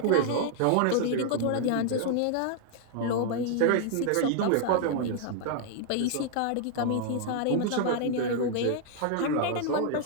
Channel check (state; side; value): different; both; correlation 0.00